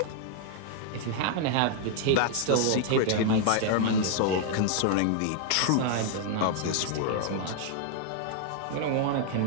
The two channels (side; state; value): both; different; correlation 0.00